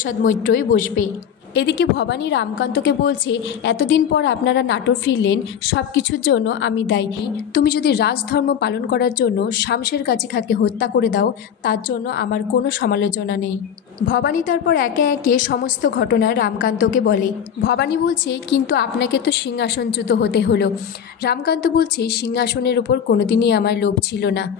মৈত্রই বসবে। এদিকে ভবানী রামকান্তকে বলছে এতদিন পর আপনারা নাটোর ফিরলেন, সব কিছুর জন্য আমি দায়ী। তুমি যদি রাজধর্ম পালন করার জন্য শামশের গাজী খাঁকে হত্যা করে দাও তার জন্য আমার কোনো সমালোচনা নেই। ভবানী তারপর একে একে সমস্ত ঘটনা রামকান্তকে বলে। ভবানী বলছে কিন্তু আপনাকে তো সিংহাসনচ্যুত হতে হলো। রামকান্ত বলছে সিংহাসনের ওপর কোনোদিনই আমার লোভ ছিল না,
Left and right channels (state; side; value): quieter; right; 8.3 dB